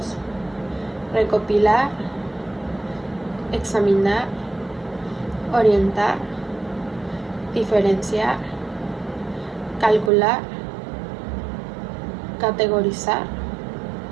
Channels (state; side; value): drops out; left; at 10.1 s